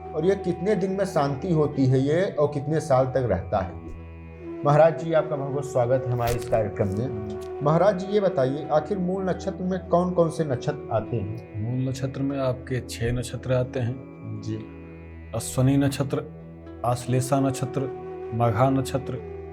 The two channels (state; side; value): identical; both; correlation 1.00